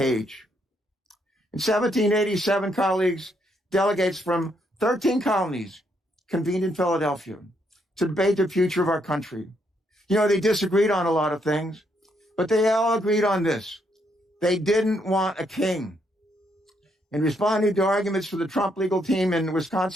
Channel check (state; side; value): normal; both; correlation 0.75